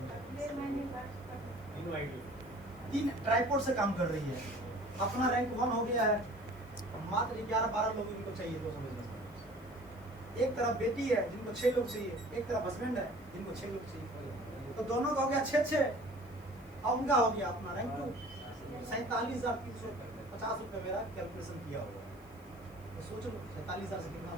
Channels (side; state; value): left; noise; hiss, 27 dB below the sound